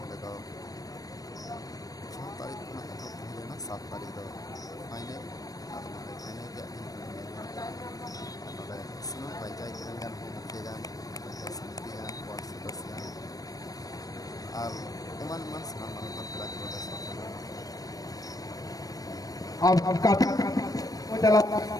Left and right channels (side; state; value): right; late; 0.18 ms